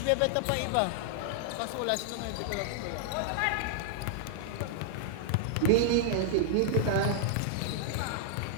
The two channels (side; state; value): both; different; correlation -0.01